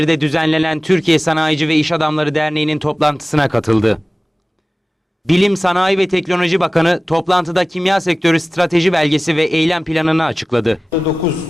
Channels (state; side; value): normal; both; correlation 0.97